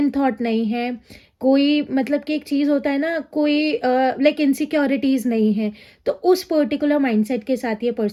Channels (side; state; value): both; identical; correlation 1.00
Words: थॉट नहीं है, कोई मतलब कि एक चीज़ होता है ना, कोई इनसिक्योरिटीज़ नहीं है। तो उस पर्टिकुलर माइंडसेट के साथ ये